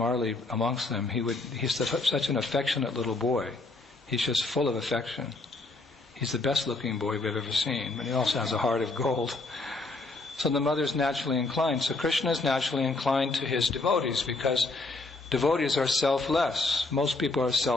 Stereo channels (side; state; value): right; quieter; 3.4 dB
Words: amongst them, he's such an affectionate little boy. He's just full of affection. He's the best looking boy we've ever seen, but he also has a heart of gold. So the mother's naturally inclined. So Krishna is naturally inclined to his devotees because devotees are selfless. Most people are